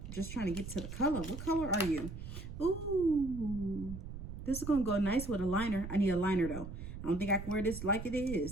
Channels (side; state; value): right; noise; rumble, 9 dB below the sound